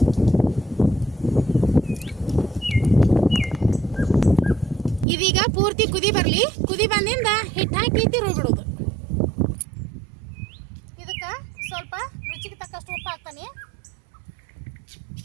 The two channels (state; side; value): drops out; left; at 5.1 s